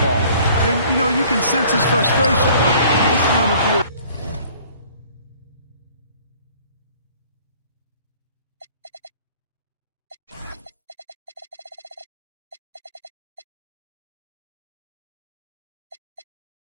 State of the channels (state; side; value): inverted; both; correlation -0.54